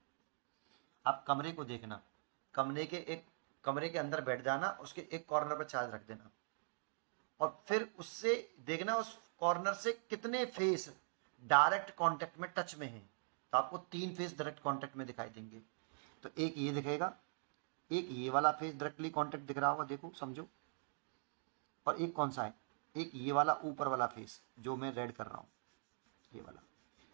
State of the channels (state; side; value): silent; left; digital silence